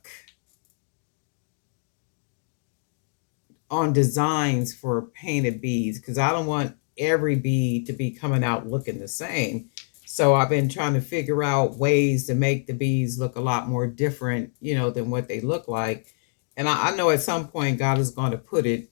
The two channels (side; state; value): right; silent; digital silence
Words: on designs for painted beads because I don't want every bead to be coming out looking the same. So I've been trying to figure out ways to make the beads look a lot more different, than what they look like. And I know at some point God is going to put it,